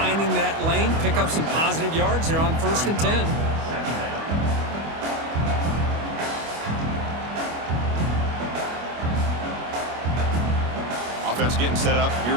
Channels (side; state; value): left; late; 25 ms